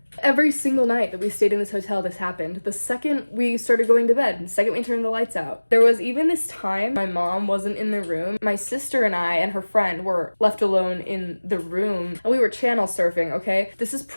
Every single night that we stayed in this hotel, this happened. The second we started going to bed, the second we turned the lights out. There was even this time my mom wasn't in the room. My sister and I and her friend were left alone in the room, and we were channel surfing, okay? This is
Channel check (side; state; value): both; inverted; correlation -1.00